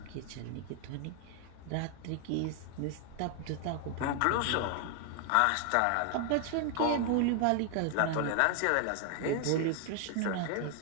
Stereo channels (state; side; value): different; both; correlation 0.00